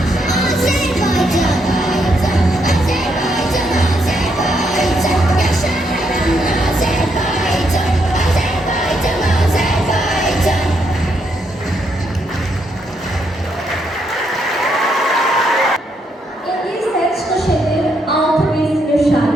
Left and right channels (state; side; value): normal; both; correlation 0.76